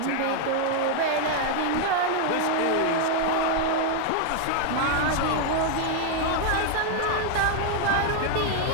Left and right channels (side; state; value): both; different; correlation 0.00